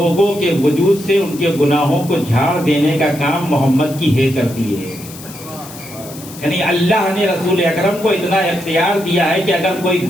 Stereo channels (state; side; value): noise; left; hiss, 16 dB below the sound